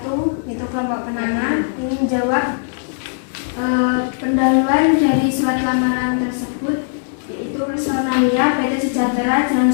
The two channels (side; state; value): right; silent; digital silence